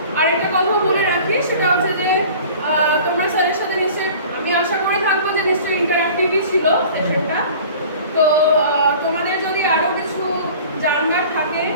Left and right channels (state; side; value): inverted; both; correlation -0.44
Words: আর একটা কথাও বলে রাখি, সেটা হচ্ছে যে তোমরা স্যারের সাথে নিশ্চয়ই, আমি আশা করে থাকবো যে নিশ্চয়ই ইন্টারঅ্যাক্টিভই ছিল সেশনটা। তো তোমাদের যদি আরও কিছু জানবার থাকে